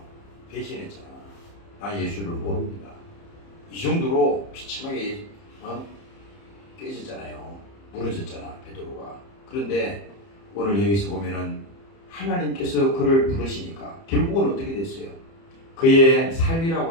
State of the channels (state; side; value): late; right; 30 ms